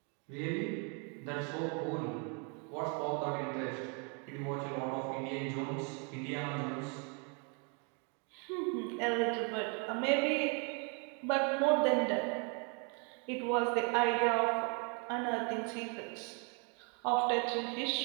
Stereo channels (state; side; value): quieter; left; 36.6 dB